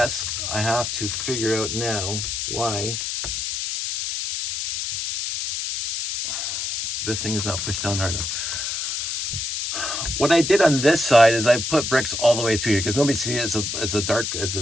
I have to figure out now why this thing is not pushed down hard enough. What I did on this side is I put bricks all the way through here because nobody sees it. It's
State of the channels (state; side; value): noise; left; hiss, 2 dB below the sound